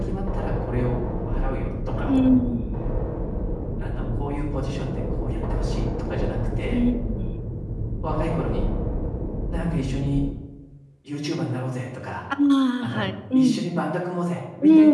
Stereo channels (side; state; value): both; identical; correlation 1.00